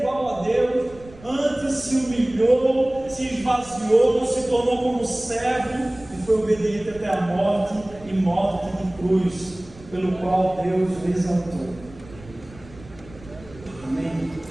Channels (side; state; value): right; noise; rumble, 20 dB below the sound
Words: a Deus, antes se humilhou, se esvaziou, não se tornou como servo e foi obediente até a morte e morte de cruz, pelo qual Deus o exaltou. Amém?